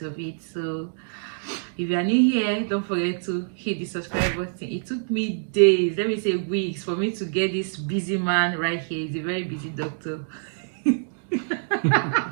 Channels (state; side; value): silent; left; digital silence